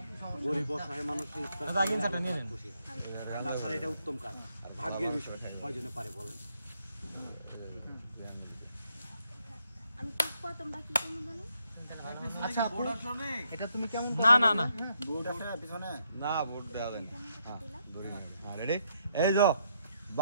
গরিব অসহায় মানুষের ইফতার দাদা আগে ইনসার্টটা নিয়ে নেন। তাছাড়া এটা উত্তম কাজ, ভাগ্যের বিষয়। কয়জনে পারে বলেন? আমি কি তোমরা কি করবে জানো? আচ্ছা আপু, এটা তুমি কেমন না না না বোর্ড আছে পিছনে না বোর্ড দেওয়া দেন। রেডি? এই যে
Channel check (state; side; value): inverted; both; correlation -0.75